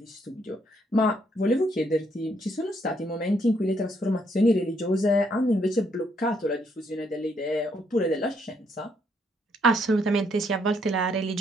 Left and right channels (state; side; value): normal; both; correlation 0.72